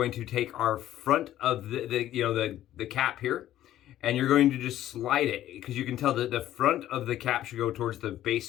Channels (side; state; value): right; quieter; 12.9 dB